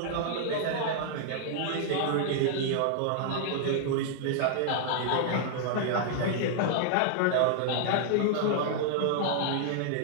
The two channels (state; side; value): different; both; correlation -0.01